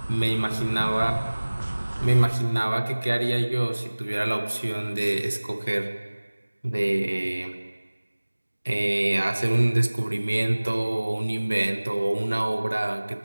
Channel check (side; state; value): both; inverted; correlation -1.00